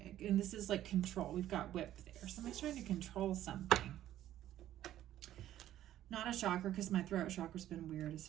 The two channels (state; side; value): quieter; left; 12.7 dB